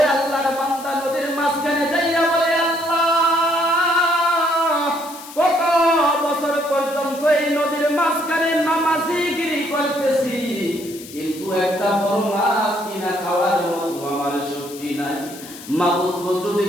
আল্লাহর বান্দা নদীর মাঝখানে যাইয়া বলে, আল্লাহ কত বছর পর্যন্ত এই নদীর মাঝখানে নামাজিগিরি করতেছি, কিন্তু একটা বড় মাছ কিনা খাওয়ার মতো আমার শক্তি নাই। মাবুদ গো, যদি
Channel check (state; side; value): noise; left; hiss, 16 dB below the sound